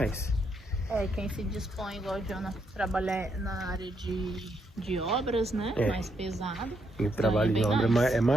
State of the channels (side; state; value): both; normal; correlation 0.78